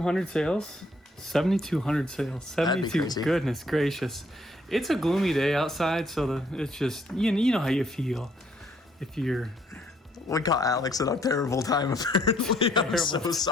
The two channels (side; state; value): both; normal; correlation 0.66